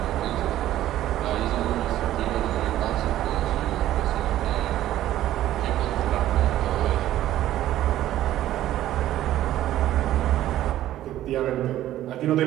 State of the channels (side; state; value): left; quieter; 13.4 dB